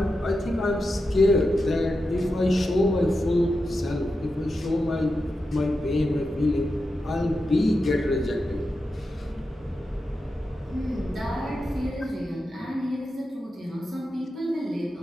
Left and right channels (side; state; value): both; normal; correlation 0.89